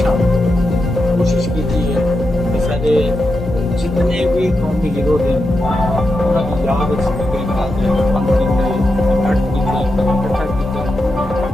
کوشش کی ہے کہ سارے جتنے بھی قومی ہیرو ہیں انہوں کی یاد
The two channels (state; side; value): normal; both; correlation 0.87